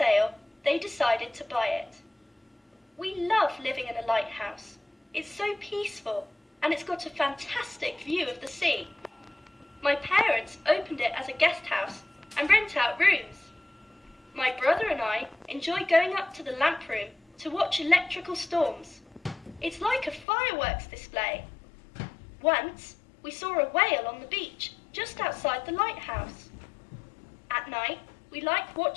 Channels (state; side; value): drops out; right; at 20.2 s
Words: they decided to buy it. We love living in a lighthouse. It's so peaceful, and it's got a fantastic view of the sea. My parents opened it as a guest house and rent out rooms. My brother and I enjoy going up to the lamp room to watch electrical storms. It's like a fireworks display. Once, we saw a whale on the beach just outside the lighthouse. At night, we like